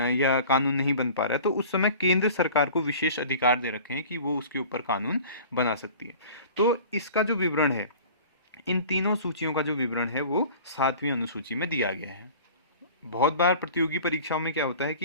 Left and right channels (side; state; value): both; inverted; correlation -0.43